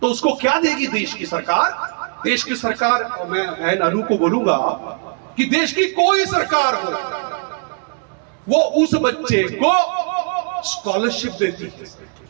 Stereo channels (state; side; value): quieter; left; 37.5 dB